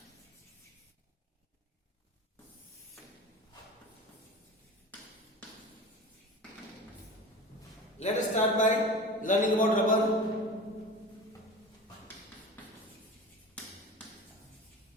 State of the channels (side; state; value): both; normal; correlation 0.34